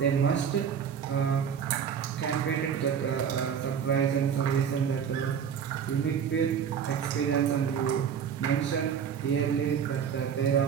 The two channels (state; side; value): quieter; left; 7.7 dB